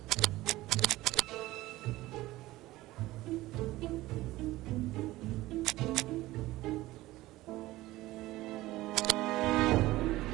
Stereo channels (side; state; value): left; quieter; 17.6 dB